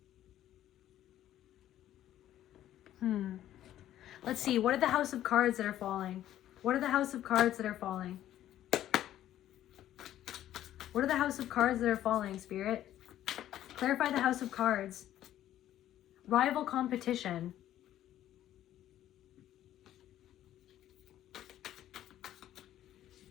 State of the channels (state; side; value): quieter; right; 12.5 dB